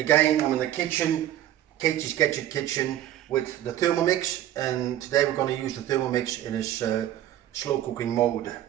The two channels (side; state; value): left; quieter; 12.5 dB